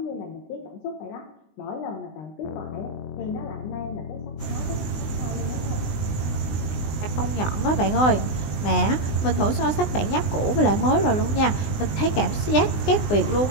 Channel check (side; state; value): right; late; 20 ms